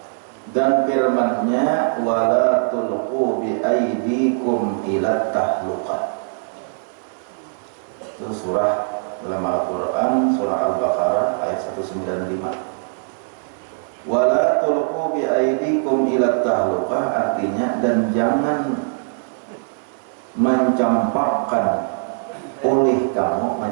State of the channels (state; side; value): silent; left; 57 dB below the other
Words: Dan firman-Nya wala tulqu bi aydikum ila tahluqah. Itu surah dalam Al-Quran, surah Al-Baqarah ayat 195. Wala tulqu bi aydikum ila tahluqah, artinya dan jangan mencampakkan oleh kamu,